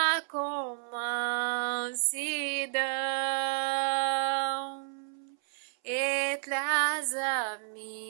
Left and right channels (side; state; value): left; silent; 57 dB below the other